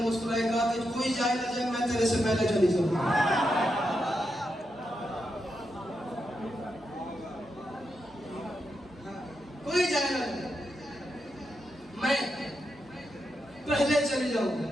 मुस्कुराया, कहा कि कोई जाए ना जाए, मैं तेरे से पहले चली जाऊंगा। कोई जाए ना जाए, मैं पहले चली जाऊंगा।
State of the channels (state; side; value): normal; both; correlation 0.85